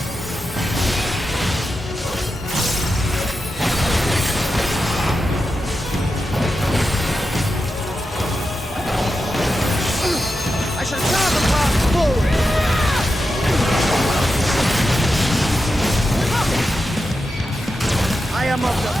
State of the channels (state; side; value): normal; both; correlation 0.89